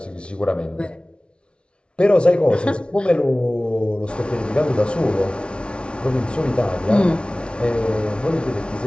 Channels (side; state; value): right; late; 0.058 ms